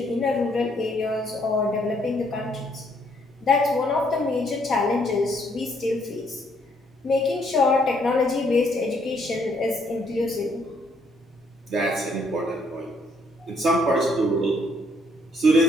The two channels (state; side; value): normal; both; correlation 0.69